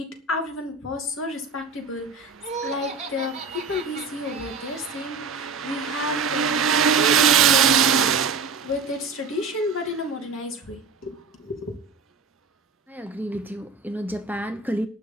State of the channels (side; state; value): left; quieter; 4.8 dB